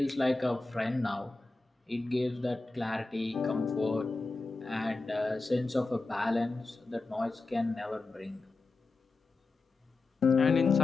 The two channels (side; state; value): right; quieter; 3.4 dB